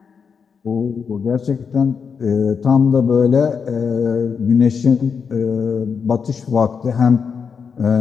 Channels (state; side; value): quieter; right; 6.1 dB